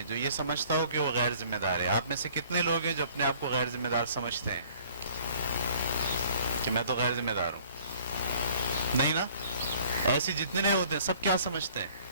جو یہ سمجھتا ہو کہ وہ غیر ذمہ دار ہے. آپ میں سے کتنے لوگ ہیں جو اپنے آپ کو غیر ذمہ دار سمجھتے ہیں کہ میں تو غیر ذمہ دار ہوں؟ نہیں نا. ایسے جتنے نہیں ہوتے سب کیا سمجھتے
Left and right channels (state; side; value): inverted; both; correlation -0.55